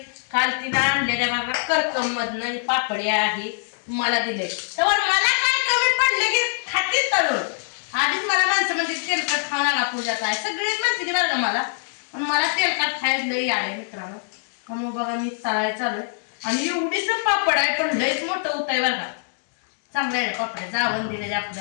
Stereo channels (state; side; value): silent; right; digital silence